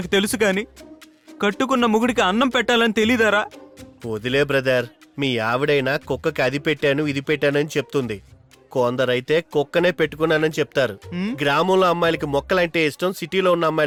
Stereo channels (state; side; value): identical; both; correlation 1.00